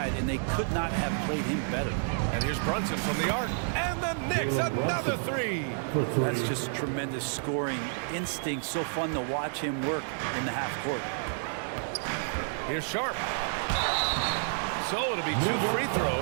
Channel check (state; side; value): silent; left; digital silence